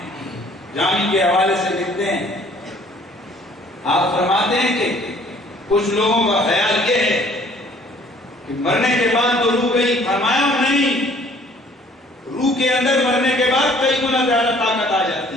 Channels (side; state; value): both; normal; correlation 0.57